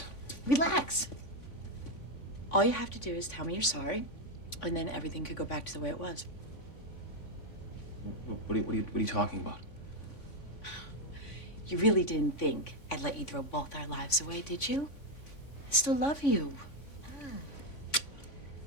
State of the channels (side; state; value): right; late; 3.5 ms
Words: Relax. All you have to do is tell me you're sorry, and then everything could go back to the way it was. What are you talking about? You really didn't think I'd let you throw both our lives away, did you? I still love you.